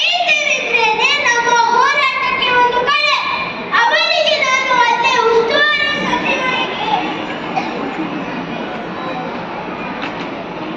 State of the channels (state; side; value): identical; both; correlation 1.00